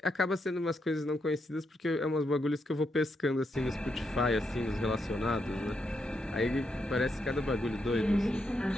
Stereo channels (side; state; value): both; normal; correlation 0.81